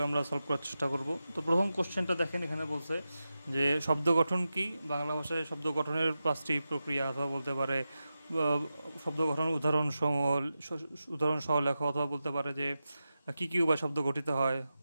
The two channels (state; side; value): inverted; both; correlation -0.92